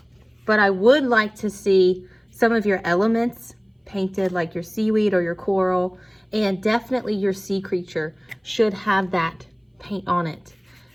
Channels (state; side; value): identical; both; correlation 1.00